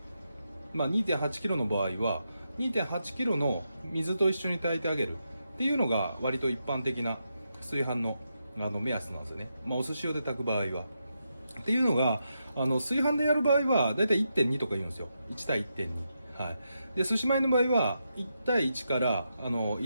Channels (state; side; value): inverted; both; correlation -0.84